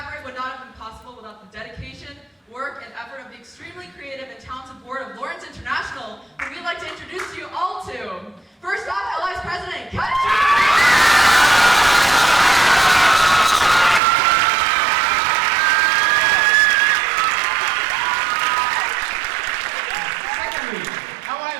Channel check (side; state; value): left; drops out; at 14.0 s